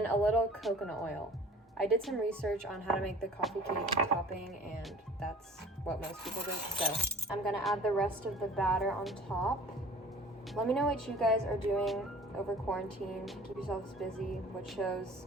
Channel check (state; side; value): normal; both; correlation 0.46